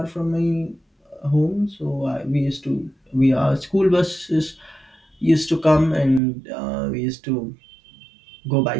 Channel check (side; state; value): left; drops out; at 6.2 s